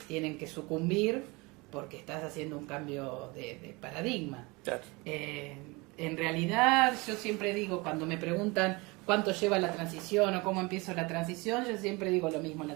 tienen que sucumbir porque estás haciendo un cambio de paradigma. Claro. En realidad, yo siempre digo, cuando me preguntan cuánto lleva la transición o cómo empiezo la transición, yo siempre digo lo mismo,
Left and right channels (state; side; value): quieter; left; 25.5 dB